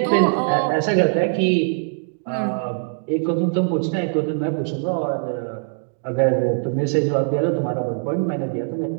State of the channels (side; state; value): left; silent; digital silence